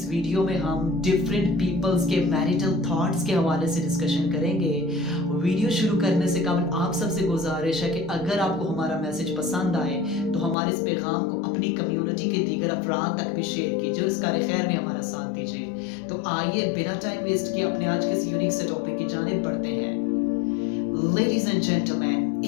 वीडियो में हम डिफरेंट पीपल्स के मैरिटल थॉट्स के हवाले से डिस्कशन करेंगे। वीडियो शुरू करने से कबल आप सबसे गुजारिश है कि अगर आपको हमारा मैसेज पसंद आए तो हमारे इस पैगाम को अपनी कम्युनिटी के दीगर अफराद तक भी शेयर कीजिए और इस कार खैर में हमारा साथ दीजिए। तो आइए बिना टाइम वेस्ट किए अपने आज के इस यूनिक से टॉपिक की जानिब बढ़ते हैं। Ladies and gentlemen,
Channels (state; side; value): drops out; right; at 10.6 s